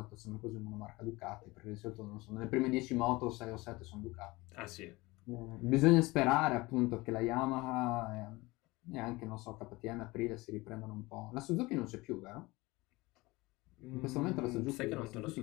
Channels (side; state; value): right; quieter; 22.0 dB